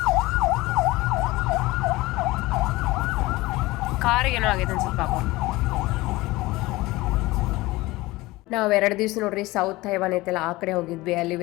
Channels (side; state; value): right; quieter; 20.1 dB